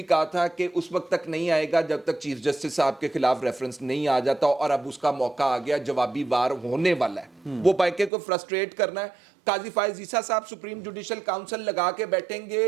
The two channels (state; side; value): drops out; left; at 8.1 s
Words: کہا تھا کہ اس وقت تک نہیں آئے گا جب تک چیف جسٹس صاحب کے خلاف ریفرنس نہیں آ جاتا, اور اب اس کا موقع آ گیا, جوابی وار ہونے والا ہے. وہ بائکے کو فرسٹریٹ کرنا ہے. قاضی فائز عیسیٰ صاحب سپریم جوڈیشل کاؤنسل لگا کے بیٹھیں گے